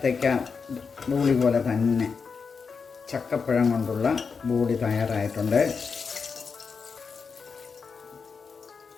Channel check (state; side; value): quieter; right; 5.4 dB